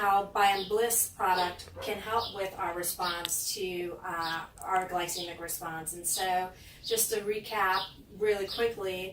Biomebliss product can help with our response to our glycemic response. And so just to recap really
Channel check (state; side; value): identical; both; correlation 1.00